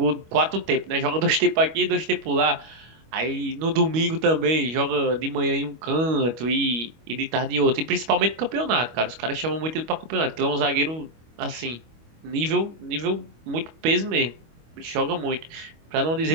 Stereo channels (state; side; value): late; left; 25 ms